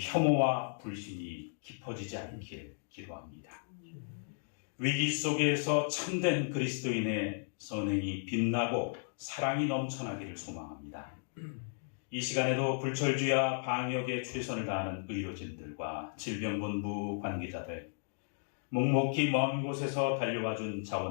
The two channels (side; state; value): right; silent; digital silence